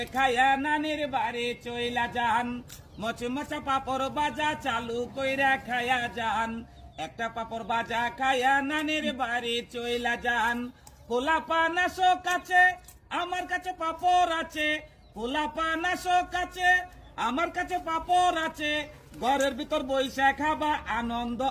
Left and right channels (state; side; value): identical; both; correlation 1.00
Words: খায়া নানির বাড়ি চইলা যান, মচমচা পাপড় বাজা চালু কইরা খায়া যান, একটা পাপড় বাজা খায়া নানির বাড়ি চইলা যান। পোলাপা নাশো কাছে আমার কাছে পাপড় আছে, পোলাপা নাশো কাছে আমার কাছে পাপড় আছে, ঘরের ভিতর বইসা খাবা আনন্দ